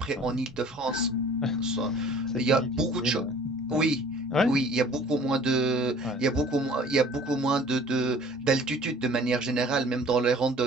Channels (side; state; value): both; normal; correlation 0.50